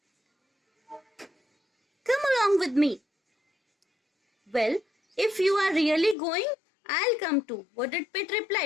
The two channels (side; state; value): right; drops out; at 6.2 s